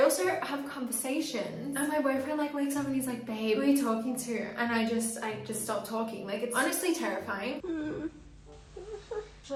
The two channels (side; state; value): both; identical; correlation 1.00